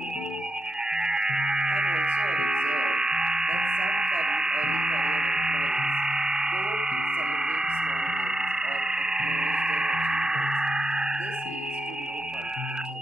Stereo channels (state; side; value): normal; both; correlation 0.85